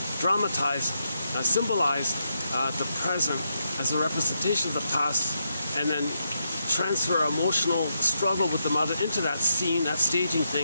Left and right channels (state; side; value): inverted; both; correlation -0.82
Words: dramatize, symbolize the present as a representation of the past, and then transfer emotional struggle with the mother into that scene, that staging